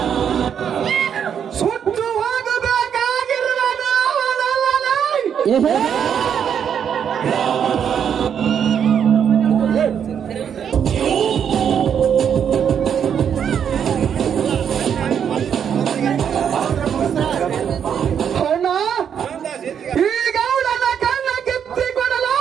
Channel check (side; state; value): left; quieter; 8.1 dB